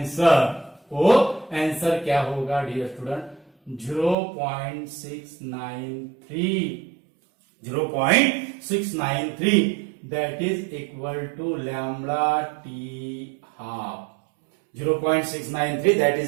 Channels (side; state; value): left; drops out; at 4.2 s